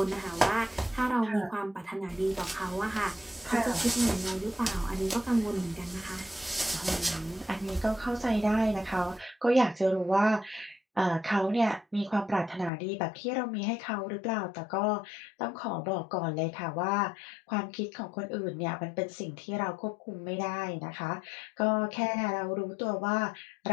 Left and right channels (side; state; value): right; drops out; at 12.7 s